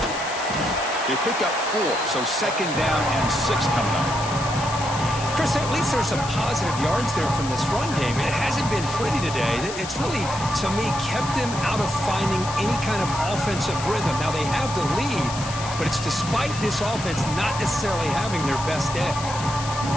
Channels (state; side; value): noise; left; hiss, 10 dB below the sound